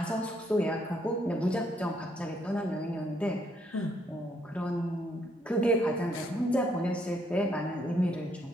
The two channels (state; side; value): normal; both; correlation 0.71